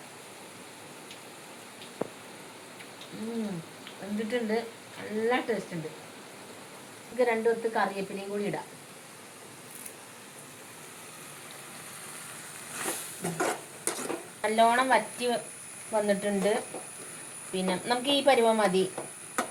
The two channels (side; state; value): both; identical; correlation 1.00